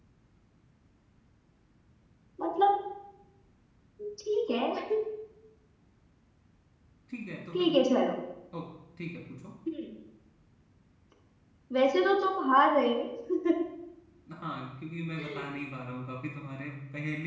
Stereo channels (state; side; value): identical; both; correlation 1.00